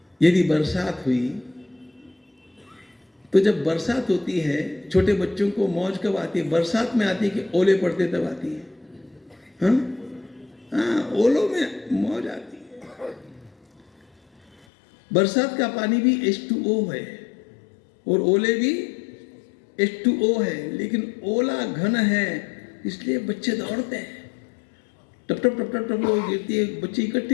यदि बरसात हुई तो जब बरसात होती है, छोटे बच्चों को मौज कब आती है? बरसात में आती है कि ओले पड़ते तब आती है? हाँ, ओलों में मौज आती है। बरसात का पानी भी H2O है और ओले भी H2O है, लेकिन ओला घन है इसलिए बच्चे दौड़ते हैं। टप टप टप टप टप वो गिरती है, बच्चे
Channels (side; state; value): right; drops out; at 14.7 s